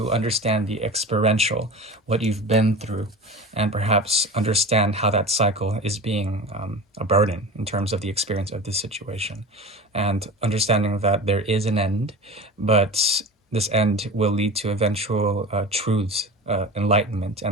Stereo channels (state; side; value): normal; both; correlation 0.33